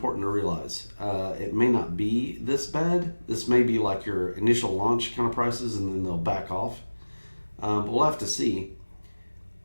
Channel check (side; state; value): both; inverted; correlation -1.00